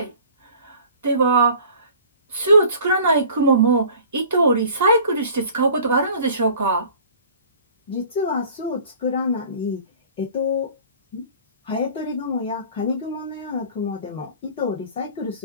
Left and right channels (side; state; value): both; inverted; correlation -0.47